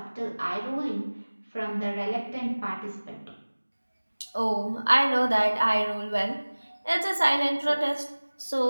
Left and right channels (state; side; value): inverted; both; correlation -1.00